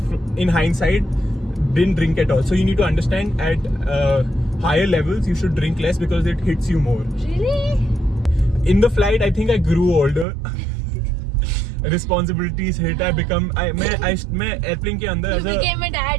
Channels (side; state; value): left; drops out; at 10.2 s